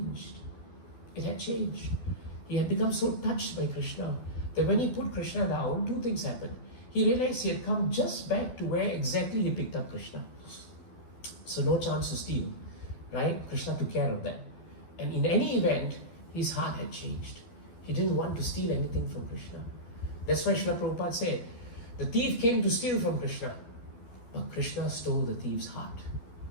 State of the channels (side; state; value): right; late; 12 ms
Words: It had changed. He had become so touched by Krishna that when he put Krishna down, two things happened. He realized he had come just back to where exactly he picked up Krishna. So no chance to steal, right? Krishna took care of that. And in any event, his heart had changed. He didn't want to steal anything from Krishna. That's why Srila Prabhupada said, the thief came to steal from Krishna, but Krishna stole the thief's heart.